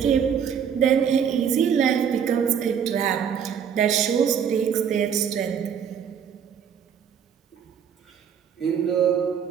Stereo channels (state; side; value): quieter; left; 7.8 dB